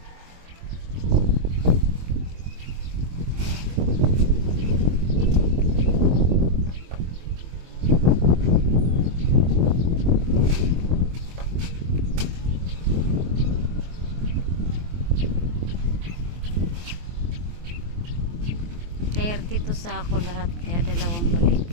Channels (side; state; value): left; late; 23 ms